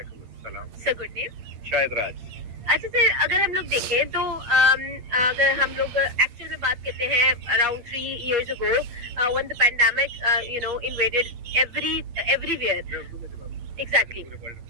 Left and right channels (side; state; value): left; late; 8.8 ms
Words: अस्सलाम। Sir good name? शायद राज। अच्छा सर, अगर हम लोग देखें तो अगर हम लोग एक्चुअल में बात करते हैं around 3 years ago when the pandemic invaded everywhere, exactly